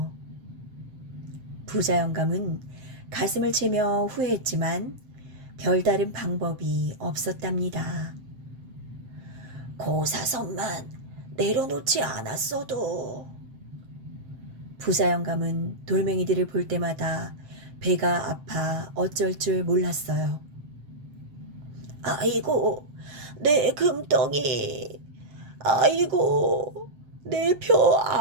부자 영감은 가슴을 치며 후회했지만 별다른 방법이 없었답니다. 고사선만 내려놓지 않았어도. 부자 영감은 돌멩이들을 볼 때마다 배가 아파 어쩔 줄 몰랐어요. 아이고, 내 금덩이. 아이고, 내 표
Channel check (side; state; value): left; late; 7.7 ms